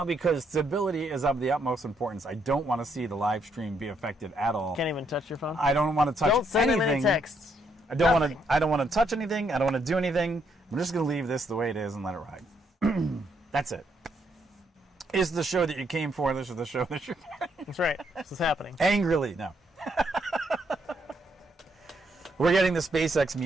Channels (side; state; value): both; normal; correlation 0.74